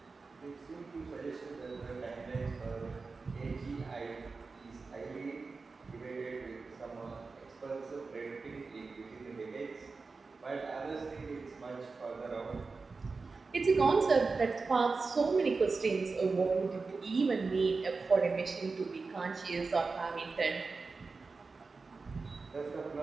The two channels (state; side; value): quieter; left; 4.2 dB